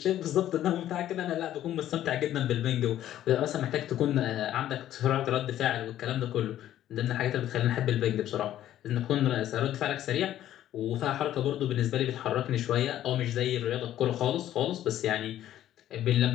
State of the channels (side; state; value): right; quieter; 12.3 dB